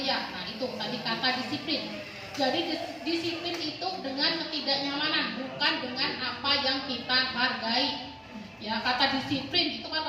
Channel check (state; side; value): identical; both; correlation 1.00